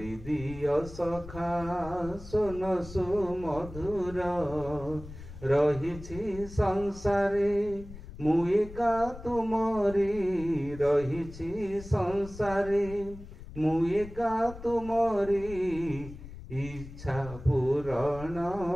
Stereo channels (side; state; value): left; noise; rumble, 14 dB below the sound